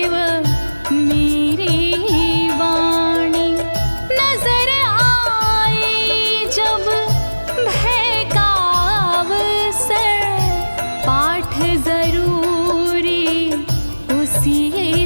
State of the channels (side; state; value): both; inverted; correlation -1.00